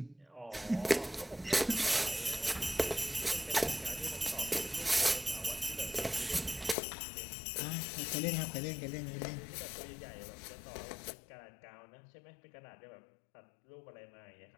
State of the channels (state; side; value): drops out; right; at 6.8 s